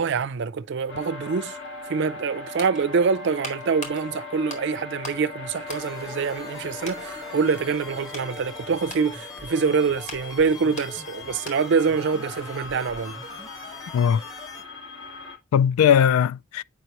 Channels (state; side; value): normal; both; correlation -0.03